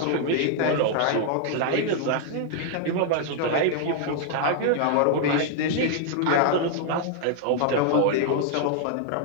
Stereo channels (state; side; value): different; both; correlation 0.00